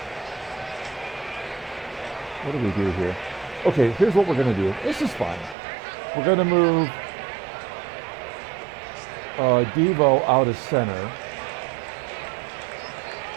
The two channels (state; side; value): drops out; left; at 5.6 s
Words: What do we do here? Okay, here's what we're going to do. This is fine. We're going to move Devo out of center.